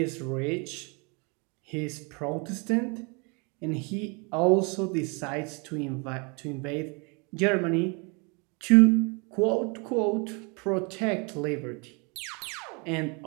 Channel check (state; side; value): quieter; left; 31.9 dB